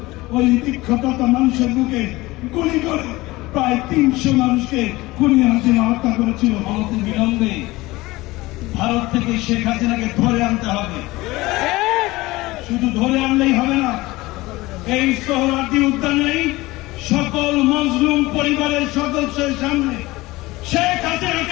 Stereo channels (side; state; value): right; quieter; 20.1 dB